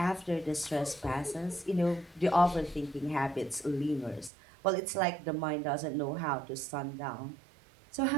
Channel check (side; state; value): left; drops out; at 4.3 s